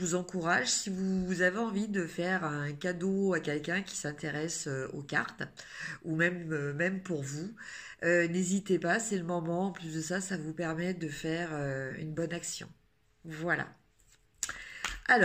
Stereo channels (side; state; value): both; identical; correlation 1.00